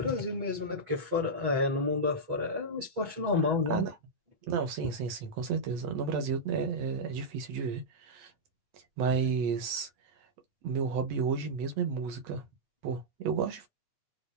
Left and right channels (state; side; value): late; left; 8.3 ms